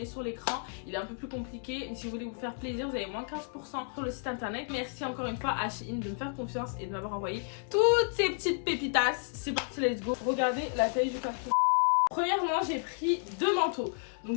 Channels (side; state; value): right; silent; 57 dB below the other